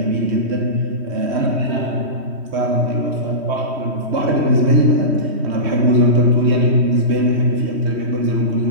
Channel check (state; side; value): late; left; 3.1 ms